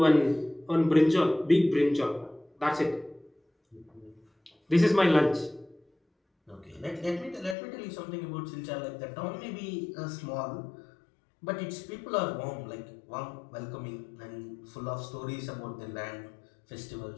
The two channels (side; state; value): right; drops out; at 7.6 s